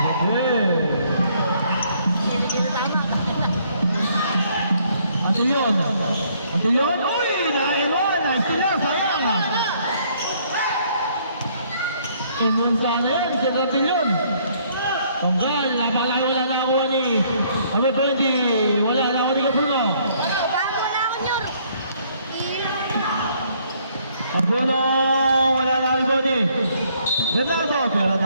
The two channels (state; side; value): inverted; both; correlation -0.65